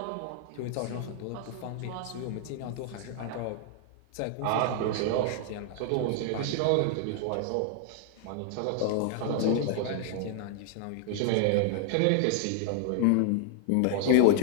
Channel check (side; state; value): both; different; correlation 0.00